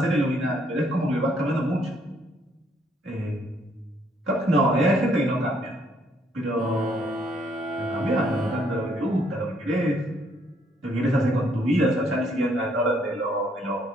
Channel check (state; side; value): normal; both; correlation 0.68